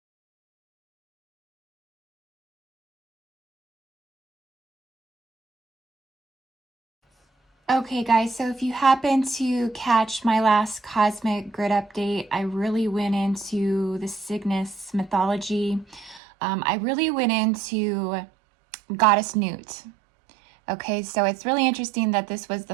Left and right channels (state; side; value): drops out; left; at 16.2 s